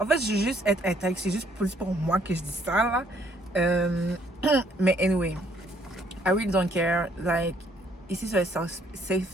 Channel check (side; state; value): both; normal; correlation 0.65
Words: fait, je veux juste être intègre. C'est juste plus pour moi que je dis ça, là. Mais anyway, I really don't care. Like, ici, c'est un